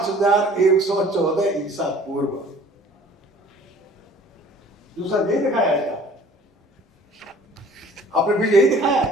ईसा पूर्व। दूसरा यही दिखाया है, आपने भी यही दिखाया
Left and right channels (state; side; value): normal; both; correlation 0.50